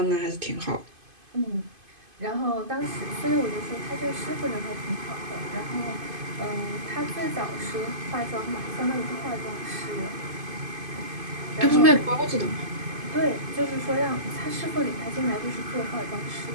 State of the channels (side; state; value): left; late; 2.5 ms